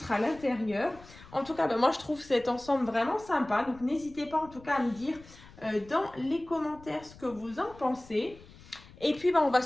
à l'intérieur. En tout cas, moi, je trouve cet ensemble vraiment sympa. Donc, n'hésitez pas en tout cas à me dire dans les commentaires ce que vous en pensez. Et puis on va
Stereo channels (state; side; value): noise; left; rumble, 21 dB below the sound